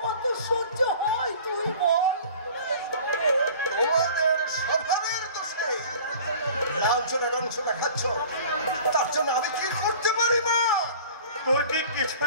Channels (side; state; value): both; inverted; correlation -0.44